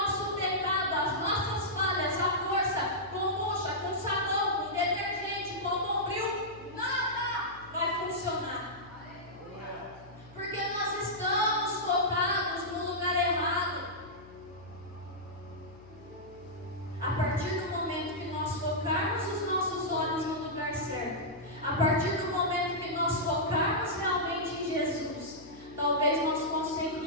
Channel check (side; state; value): left; noise; hum, 22 dB below the sound